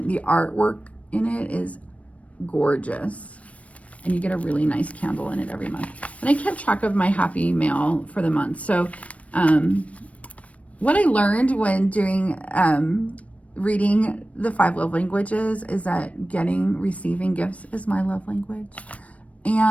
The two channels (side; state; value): right; late; 0.065 ms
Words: The artwork in it is gorgeous. And you get a really nice candle in it every month. And I kept track of my happy mail for the month. So what I learned when doing reading the 5 love languages is that receiving gifts is my love language.